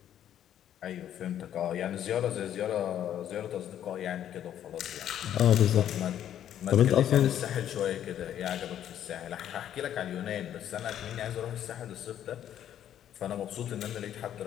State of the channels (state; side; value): quieter; right; 10.6 dB